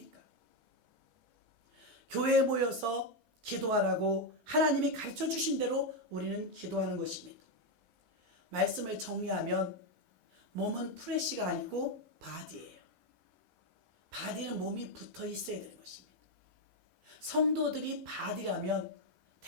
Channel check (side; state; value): both; normal; correlation 0.05